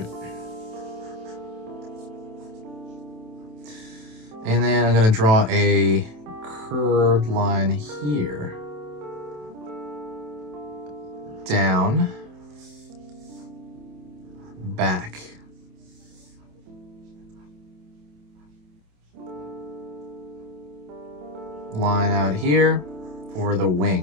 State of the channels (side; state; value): left; late; 27 ms